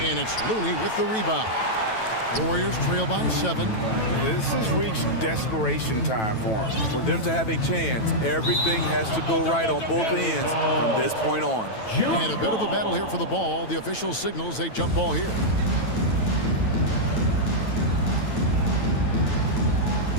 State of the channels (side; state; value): right; late; 9.1 ms